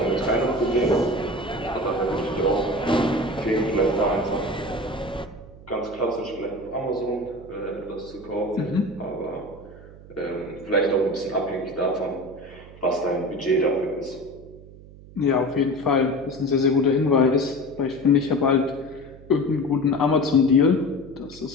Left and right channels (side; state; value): right; noise; hum, 19 dB below the sound